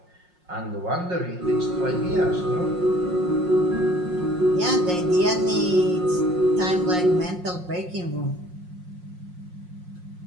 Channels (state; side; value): late; left; 5.6 ms